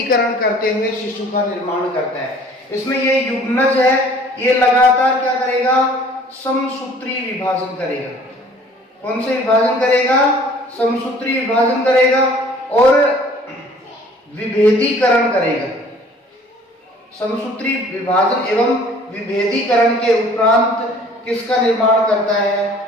करते हुए शिशु का निर्माण करता है। इसमें ये युग्मज है, ये लगातार क्या करेगा? समसूत्री विभाजन करेगा। कौन से विभाजन करेगा? समसूत्री विभाजन करेगा और विभेदीकरण करेगा। समसूत्री विभाजन एवं विभेदीकरण के उपरांत किसका निर्माण करता है?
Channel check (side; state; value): both; normal; correlation 0.52